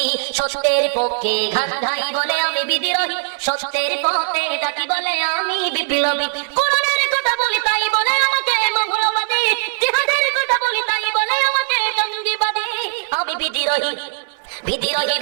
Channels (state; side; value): silent; left; 66 dB below the other